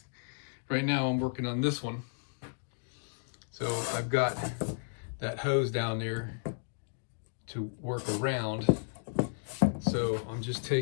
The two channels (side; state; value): right; silent; digital silence